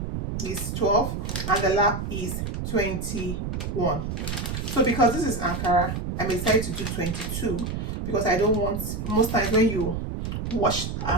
is 12, and the lap is 21. So because this is Ankara, I decided to do 22 because I don't want, most times when you wash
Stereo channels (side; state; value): right; noise; rumble, 4 dB below the sound